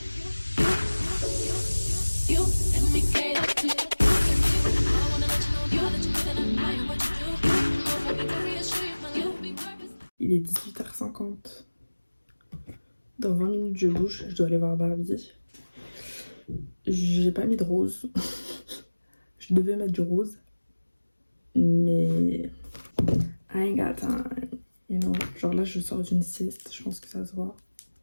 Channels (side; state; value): both; inverted; correlation -1.00